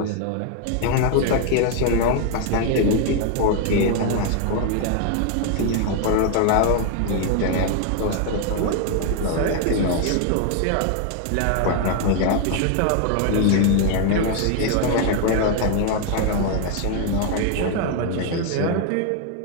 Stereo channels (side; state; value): both; different; correlation 0.00